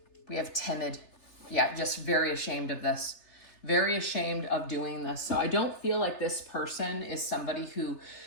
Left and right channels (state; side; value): late; right; 3.3 ms